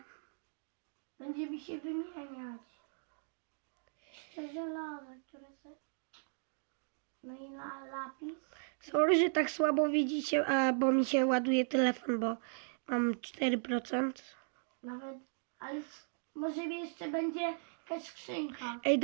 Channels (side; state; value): left; silent; digital silence